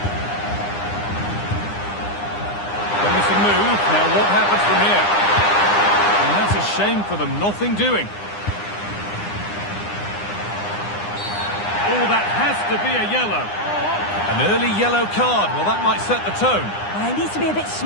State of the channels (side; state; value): right; late; 9.8 ms